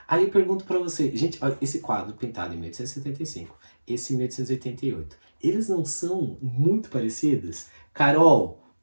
Aí eu pergunto pra você, gente, olha, esse quadro pintado em 1875, esse em 1888, eles não são muito parecidos? Carol,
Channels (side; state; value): both; inverted; correlation -1.00